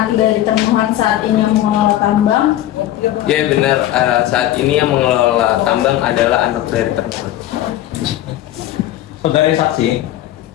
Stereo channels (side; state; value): right; quieter; 13.4 dB